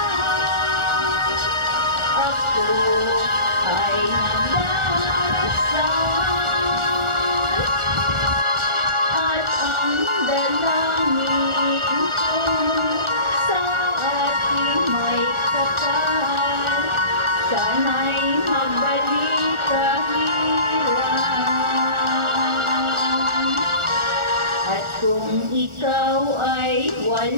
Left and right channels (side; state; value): left; late; 1.4 ms